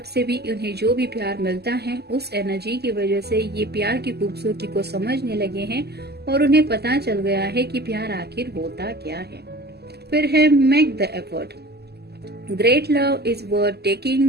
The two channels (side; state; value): left; late; 0.47 ms